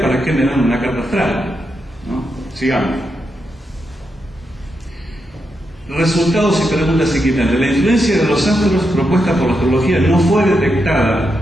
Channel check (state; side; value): normal; both; correlation 0.84